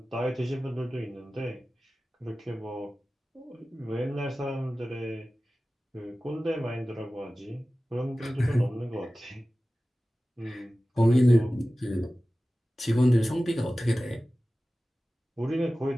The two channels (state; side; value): normal; both; correlation 0.96